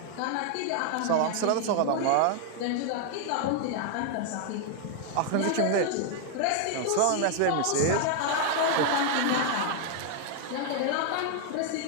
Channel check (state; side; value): different; both; correlation 0.00